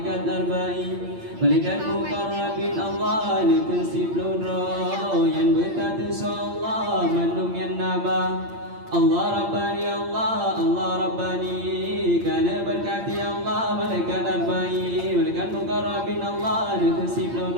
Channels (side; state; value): left; late; 8.7 ms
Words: arba'in. Malaikat mukarrabin Allah nekun siplun roh yang bertatu Allah mandum yang nama. Allah Rabbani Allah Rabbani kan berkati Allah malaikat arba'in. Malaikat mukarrabin Allah nekun siplun